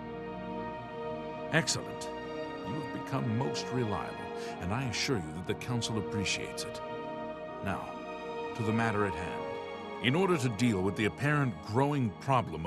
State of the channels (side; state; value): both; identical; correlation 1.00